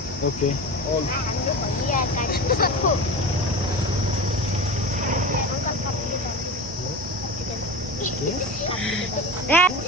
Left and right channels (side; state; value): both; normal; correlation 0.28